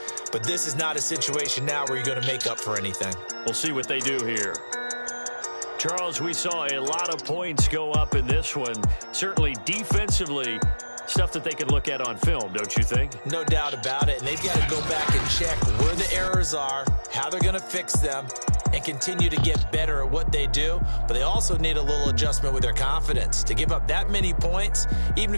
But this is not a situation now where you're going to make up for anything. We'll see what they do here. Charles, we saw a lot of points go up in this one. Certainly defensively, stuff that they can look at on film, don't you think? No doubt about it. And they've got to go back and check where the errors are, how they're going to fix them, and continue to get better at what they do. But they also need a little adjustment with their confidence. To give up that many points, even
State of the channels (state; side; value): inverted; both; correlation -1.00